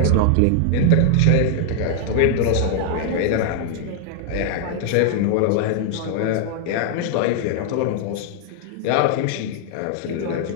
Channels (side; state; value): both; different; correlation 0.00